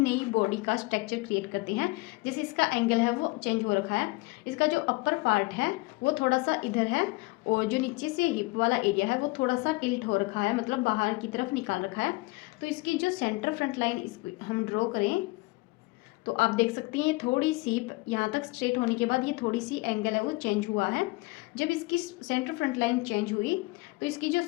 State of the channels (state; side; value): quieter; right; 23.9 dB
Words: बॉडी का स्ट्रक्चर क्रिएट करते हैं। जैसे इसका एंगल है वो चेंज हो रखा है, इसका जो अपर पार्ट है वो थोड़ा सा इधर है और जो नीचे से हिप वाला एरिया है वो थोड़ा सा टिल्ट हो रखा है, मतलब बाहर की तरफ निकाल रखा है। तो इसकी जो सेंटर फ्रंट लाइन इसको हम ड्रॉ करें तो आप देख सकती हैं थोड़ी सी यहाँ तक स्ट्रेट होने के बाद ये थोड़ी सी एंगल है वो चेंज हुआ है। जब इसकी सेंटर फ्रंट लाइन चेंज हुई तो इसकी जो